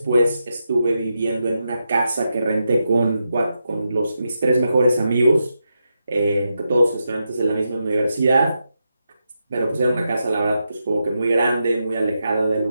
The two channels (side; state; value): both; inverted; correlation -0.86